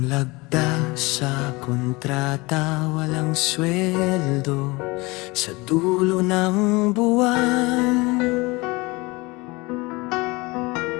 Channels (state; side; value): quieter; right; 24.1 dB